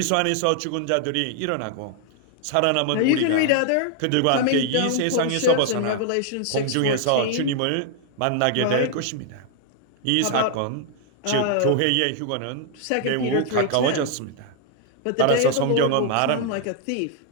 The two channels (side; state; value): both; different; correlation 0.00